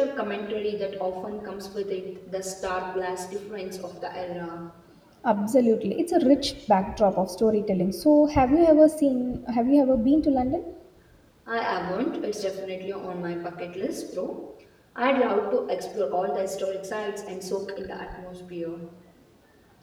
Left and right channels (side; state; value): both; identical; correlation 1.00